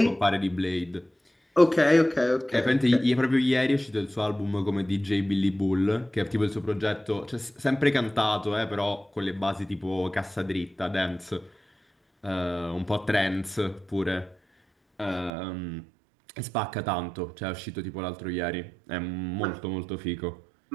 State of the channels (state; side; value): drops out; left; at 15.3 s